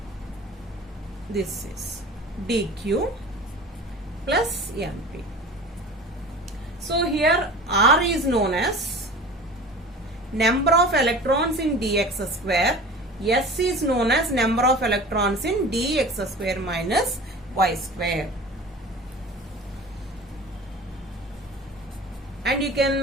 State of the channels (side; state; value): both; normal; correlation 0.39